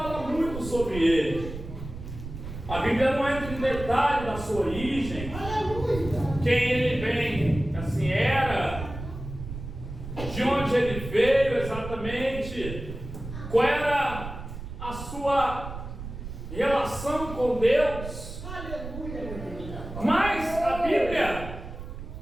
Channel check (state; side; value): noise; right; rumble, 10 dB below the sound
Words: muito sobre ele. A Bíblia não entra em detalhe da sua origem, quem ele vem, assim era, de onde ele veio exatamente, qual era a sua relação com Deus. Mas a Bíblia